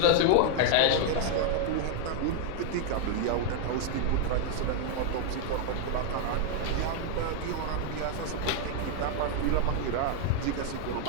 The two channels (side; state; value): both; different; correlation 0.00